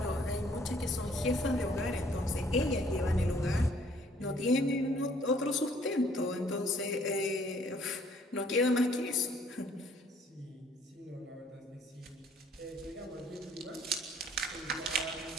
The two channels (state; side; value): normal; both; correlation 0.61